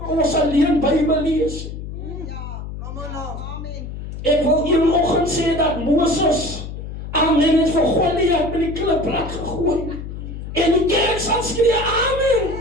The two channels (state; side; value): noise; left; hum, 9 dB below the sound